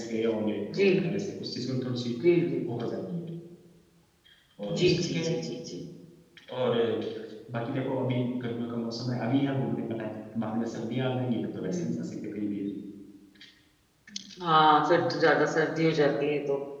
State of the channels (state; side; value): identical; both; correlation 1.00